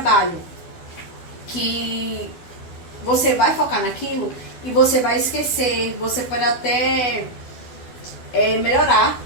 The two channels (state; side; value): late; right; 12 ms